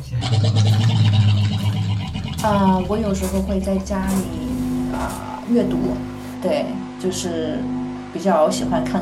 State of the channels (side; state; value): both; identical; correlation 1.00